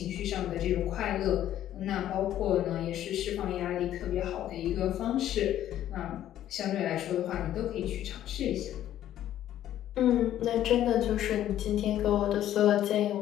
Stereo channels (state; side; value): quieter; right; 12.0 dB